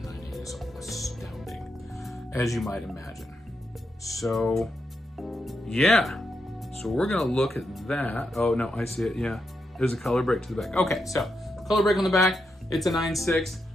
a 9.8 is astounding, as you might imagine. So, yeah. So we're gonna look at that. Oh no, I see it. Yeah, there's a color break to the back. Okay, so color break on the back. It's a 9.6.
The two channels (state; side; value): normal; both; correlation 0.84